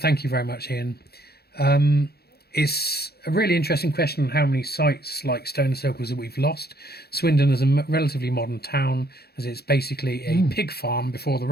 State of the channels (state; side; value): late; right; 0.46 ms